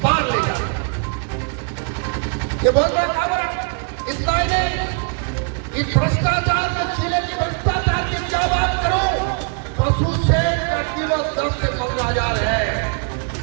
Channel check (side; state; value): left; quieter; 39.3 dB